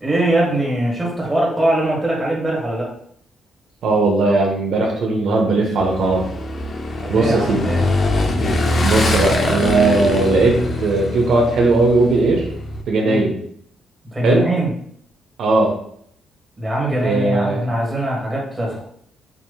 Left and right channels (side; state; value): both; normal; correlation 0.76